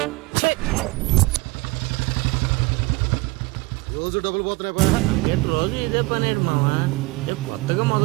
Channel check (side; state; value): left; quieter; 23.5 dB